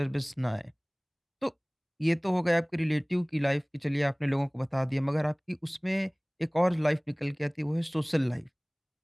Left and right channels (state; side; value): identical; both; correlation 1.00